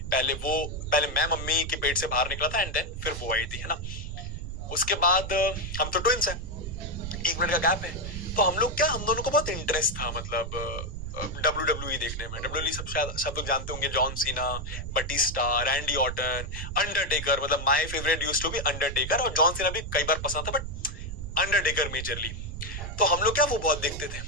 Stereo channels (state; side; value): noise; right; rumble, 7 dB below the sound